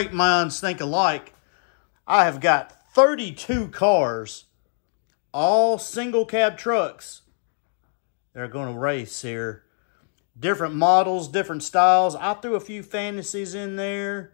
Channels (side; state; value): right; silent; digital silence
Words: minds think alike. I have got 32 cars, all single cab trucks. They're going to race here. Different models, different styles. I threw a few fantasies in there,